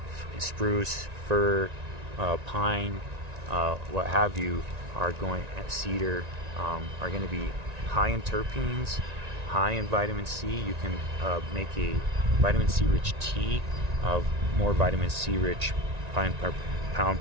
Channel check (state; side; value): late; left; 1.9 ms